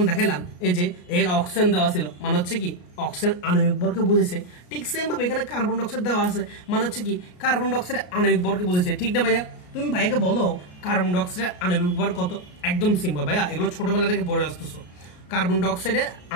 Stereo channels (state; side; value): late; right; 33 ms